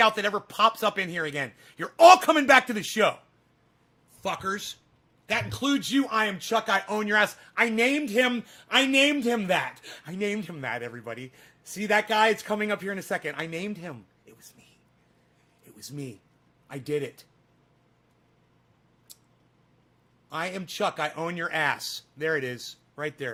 that ever pops up in here again. You're all coming back to the show. Fuckers. That includes you. I am Chuck. I own your ass. I named him that. I named him that, everybody. See that guy? It's coming up here in a second. I named him. It was me. It was me. I did it. I am Chuck. I own your ass. There it is. Right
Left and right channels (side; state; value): both; identical; correlation 1.00